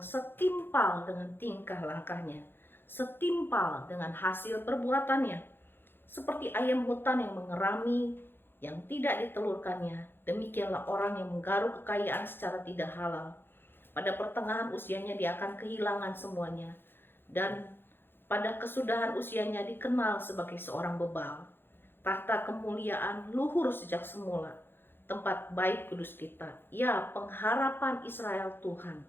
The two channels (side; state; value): right; late; 0.10 ms